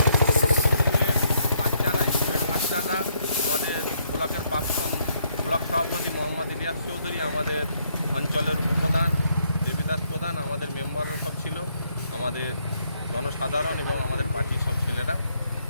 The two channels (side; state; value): both; inverted; correlation -0.72